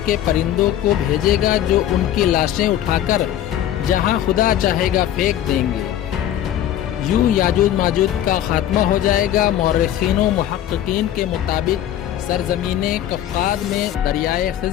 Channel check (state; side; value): quieter; right; 11.5 dB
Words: के परिंदों को भेजेगा जो उनकी लाशें उठाकर जहां खुदा चाहेगा फेंक देंगे। यूं याजूज माजूज का खात्मा हो जाएगा। मौरखीन व मुहक्किकीन के मुताबिक सरजमीन कफ़्क़ाद में दरियाए